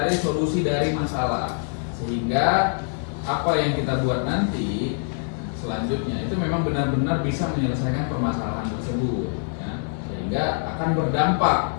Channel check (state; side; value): silent; right; 62 dB below the other